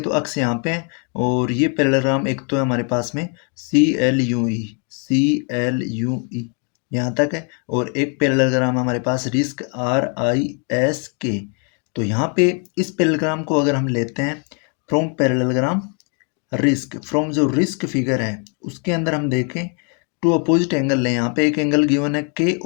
तो अक्स यहाँ पे है और ये पैरेललोग्राम एक तो है हमारे पास में CLUE यहाँ तक है, और एक पैरेललोग्राम हमारे पास रिस्क RISK। तो यहाँ पे इस पैरेललोग्राम को अगर हम लेते हैं फ्रॉम पैरेललोग्राम रिस्क, फ्रॉम जो रिस्क फिगर है उसके अंदर हम देखें टू अपोजिट एंगल लें। यहाँ पे एक एंगल गिवन है K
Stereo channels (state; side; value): quieter; right; 39.1 dB